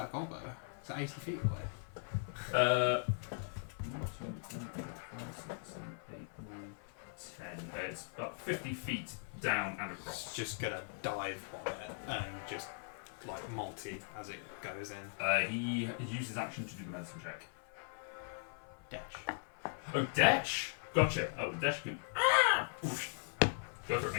gobbo? Is that 80 feet away? 1, 2, 3, 4, 5, 6, 7, 8, 9, 10. It's about 50 feet down and across. It's just gonna dive on it and just like multi as it goes in. He uses action to do the medicine check. Dash. Oh, dash! Gotcha. Oh, dash can. Oof. Go for it,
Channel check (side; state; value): right; silent; 52 dB below the other